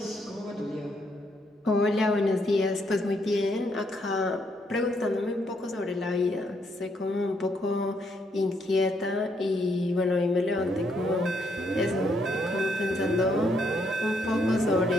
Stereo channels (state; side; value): normal; both; correlation 0.74